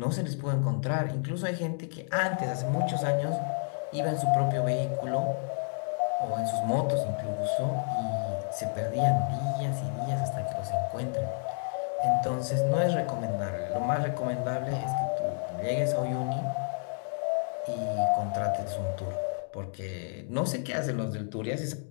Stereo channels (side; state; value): right; silent; digital silence